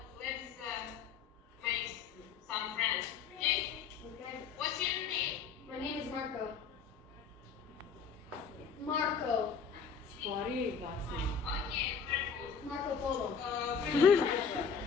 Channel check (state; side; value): quieter; right; 6.2 dB